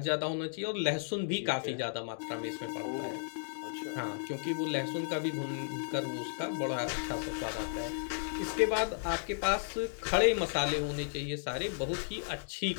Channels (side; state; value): right; silent; digital silence